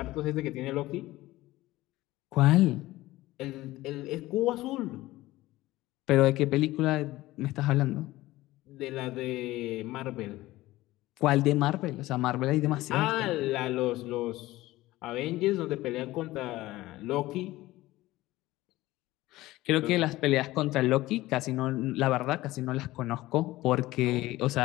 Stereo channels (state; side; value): quieter; right; 17.5 dB